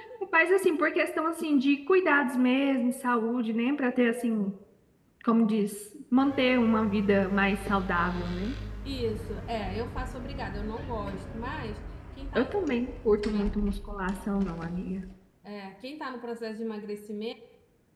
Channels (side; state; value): both; identical; correlation 1.00